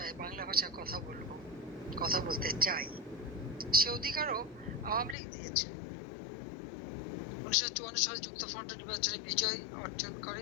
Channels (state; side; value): drops out; right; at 5.2 s